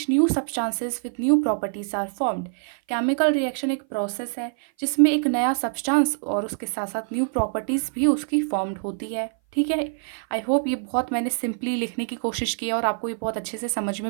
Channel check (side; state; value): left; silent; 57 dB below the other